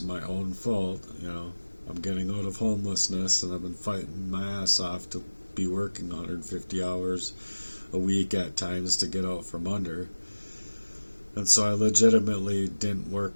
my own fault. I'm getting out of homelessness, and I've been fighting my ass off to be working 150 hours a week at times to get out from under. And so I legitimately didn't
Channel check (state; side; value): inverted; both; correlation -1.00